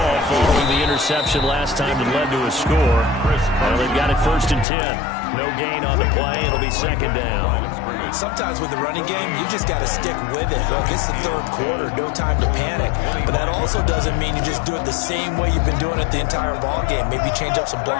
following the interception last time that led to a score. Well, they've got it first and 10. No gain on the play. It'll be second down. Sometimes with the running game, you just got to stick with it. Look, it's the third quarter, no time to panic. But that also doesn't mean you just do it the same way you've been doing it the entire ball game. Maybe change up some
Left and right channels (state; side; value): drops out; right; at 4.7 s